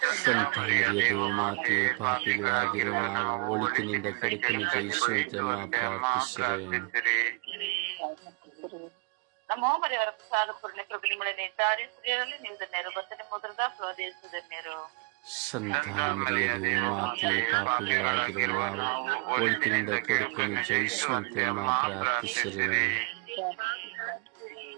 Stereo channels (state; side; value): quieter; left; 31.5 dB